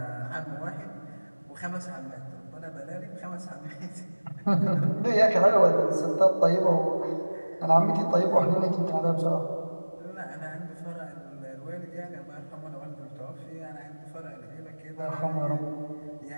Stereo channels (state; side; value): inverted; both; correlation -1.00